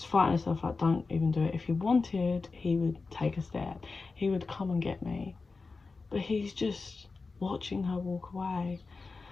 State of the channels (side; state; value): right; quieter; 4.1 dB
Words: fighting herself, like, don't even do it. If he wanted, he would take a step. He would come and get me. But he's just watching her walk away.